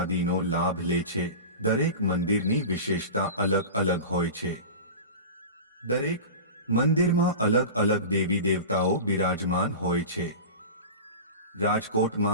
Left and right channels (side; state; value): both; inverted; correlation -0.31